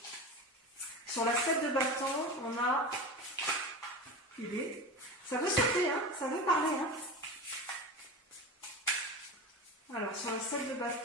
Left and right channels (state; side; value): normal; both; correlation 0.27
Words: Sur la 7 de bâton, on a... Ça veut sauter, hein, ça veut parler. Hein. Alors, sur la 7 de